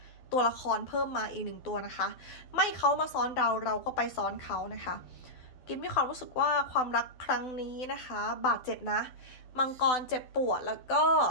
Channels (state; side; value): late; right; 12 ms